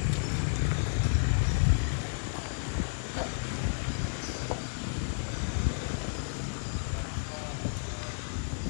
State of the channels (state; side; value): silent; right; digital silence